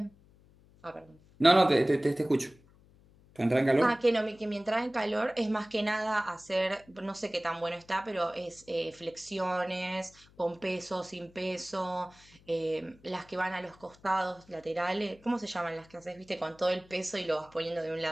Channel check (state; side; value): noise; left; hum, 27 dB below the sound